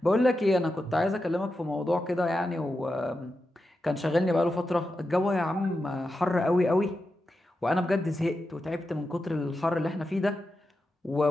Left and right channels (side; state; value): both; normal; correlation 0.89